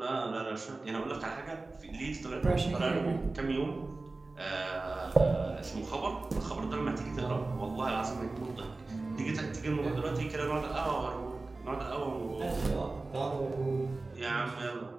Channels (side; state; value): left; quieter; 3.4 dB